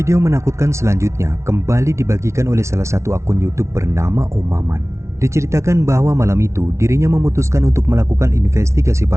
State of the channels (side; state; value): left; late; 0.13 ms